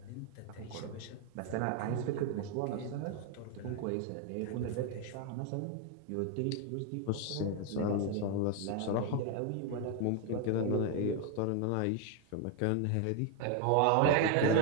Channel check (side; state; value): both; different; correlation 0.01